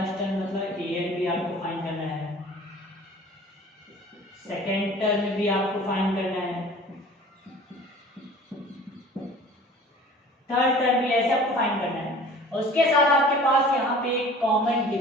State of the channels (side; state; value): both; normal; correlation 0.45